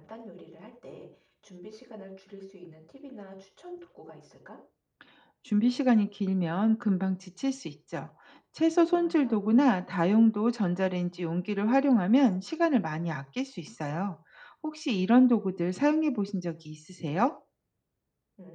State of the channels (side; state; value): both; identical; correlation 1.00